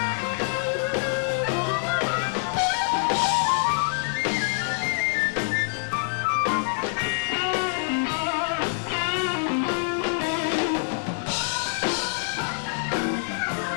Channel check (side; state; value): right; silent; digital silence